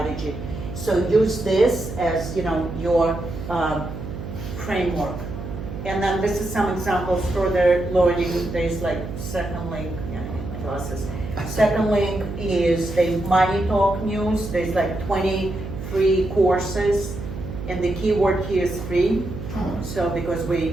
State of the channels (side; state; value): right; noise; hum, 8 dB below the sound